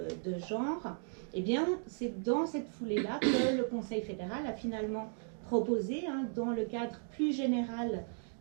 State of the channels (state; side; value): silent; left; 54 dB below the other